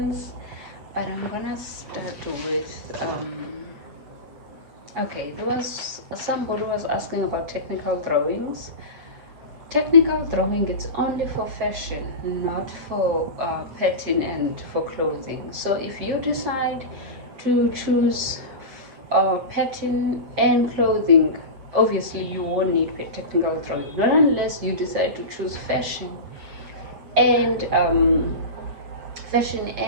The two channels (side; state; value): left; late; 7.1 ms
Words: but I'm gonna start with okay, there was somebody was asking about technical drawings. Technical drawing, it's only for fashion, not for pattern and for clothing. So if you decide to choose pattern and clothing, obviously you won't need technical drawing, not unless you decide to choose and fashion